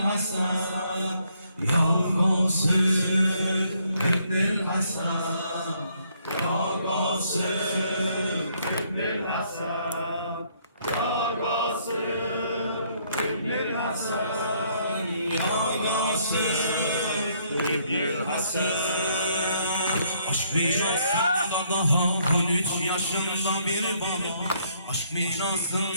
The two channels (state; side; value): inverted; both; correlation -0.69